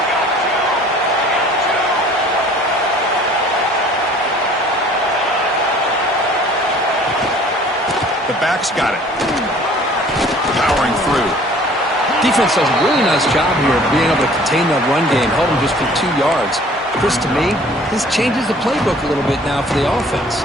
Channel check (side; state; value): both; normal; correlation 0.52